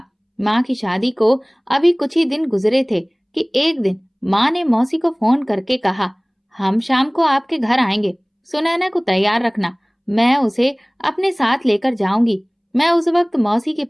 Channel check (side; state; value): both; identical; correlation 1.00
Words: माँ की शादी को अभी कुछ ही दिन गुजरे थे कि एक दिन माँ ने मौसी को फोन करके कहा, हम शाम को आपके घर आएंगे, सुनैना को तैयार रखना, मैं उसे अपने साथ लेकर जाऊंगी। मैं उस वक्त मौसी के